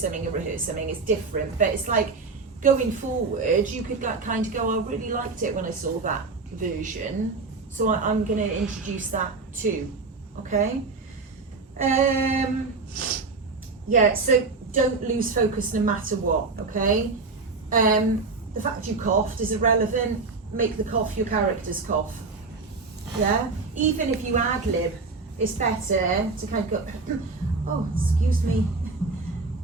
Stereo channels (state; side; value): quieter; left; 4.0 dB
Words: something it's different. But it's like, going forward, you could like, kind of go, I really liked it when I saw that version. So I'm going to introduce that too. Okay? Yeah, so don't lose focus no matter what, okay? The fact you coughed is irrelevant. Make the cough your character's cough. Yeah? Even if you ad-lib, it's better to kind of go, oh, excuse me,